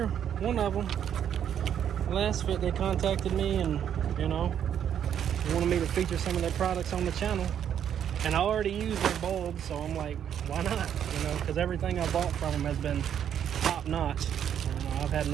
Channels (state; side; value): quieter; left; 9.2 dB